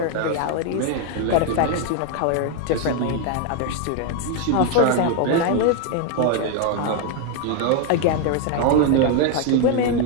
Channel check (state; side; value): different; both; correlation 0.01